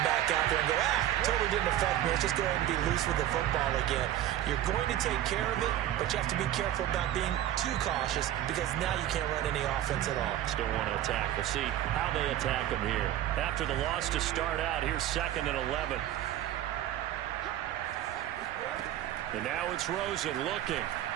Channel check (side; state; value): left; quieter; 12.5 dB